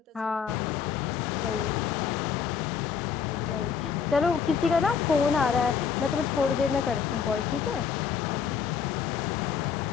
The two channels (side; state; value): right; quieter; 6.8 dB